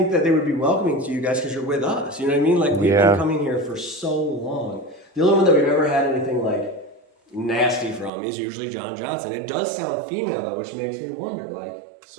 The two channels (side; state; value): left; drops out; at 8.1 s